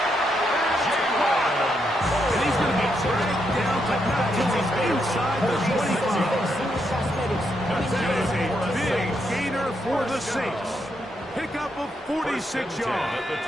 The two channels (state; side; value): normal; both; correlation 0.80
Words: And he's going to be dragged down, but not till he's inside the 25. That is a big gainer for the Saints. Pickup of 46 yards. At the